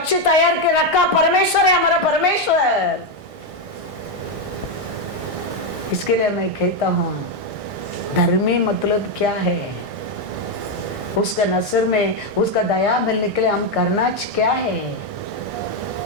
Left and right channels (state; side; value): late; left; 1.6 ms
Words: तैयार के रखा परमेश्वर है, हमारा परमेश्वर। इसके लिए मैं कहता हूं, धर्मी मतलब क्या है? उसका नजर में उसका दया मिलने के लिए हम करना क्या है?